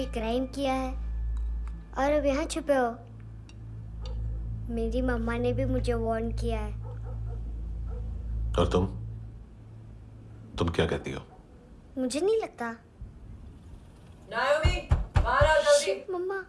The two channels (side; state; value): both; identical; correlation 1.00